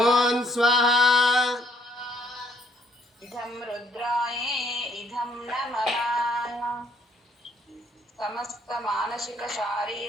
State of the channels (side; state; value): both; normal; correlation 0.66